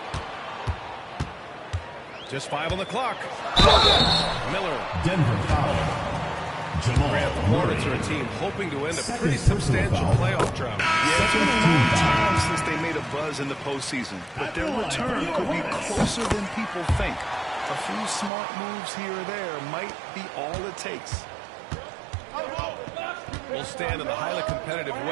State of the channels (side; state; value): left; drops out; at 18.3 s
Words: Just 5 on the clock. Miller. Denver foul. Jamal Grant, the Hornets are a team hoping to end a pretty substantial playoff drought. Yeah, it's been a long time since they made a buzz in the postseason, but their return could be closer than people think. A few smart moves here or there might be all it takes. We'll stand in the highly competitive